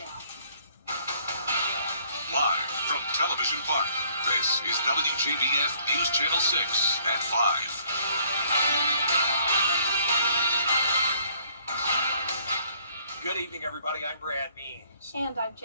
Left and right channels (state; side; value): inverted; both; correlation -0.61